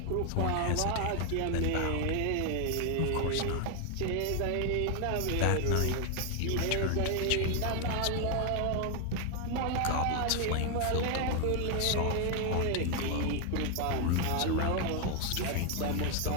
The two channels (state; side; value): different; both; correlation 0.00